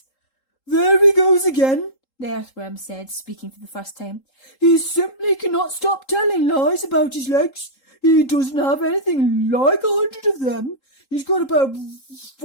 "There he goes again," the earthworm said, speaking for the first time. "He simply cannot stop telling lies about his legs. He doesn't have anything like 100 of them. He's got about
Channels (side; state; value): right; late; 3.8 ms